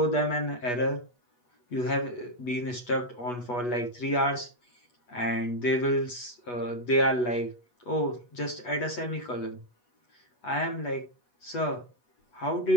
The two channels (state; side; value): late; right; 8.2 ms